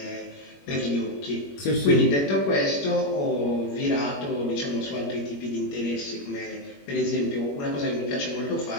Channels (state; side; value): late; right; 21 ms